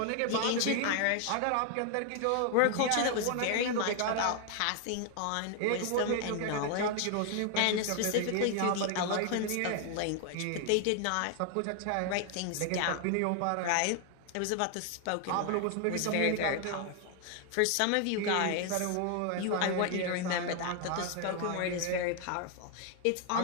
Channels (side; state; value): both; different; correlation 0.00